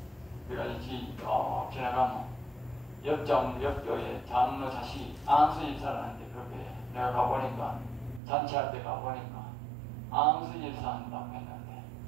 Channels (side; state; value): left; drops out; at 8.2 s